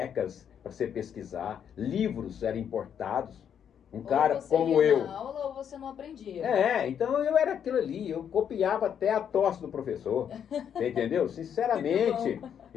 para você pesquisar, livros eram importados. Um cara Ou você como ia eu. na aula ou você não aprendia. Então eu era aquilo ali, eu copiava até a tosse do professor. Você entendeu? Sinceramente,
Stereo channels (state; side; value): quieter; right; 8.5 dB